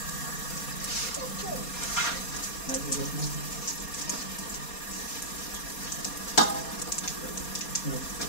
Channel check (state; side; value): late; right; 4.2 ms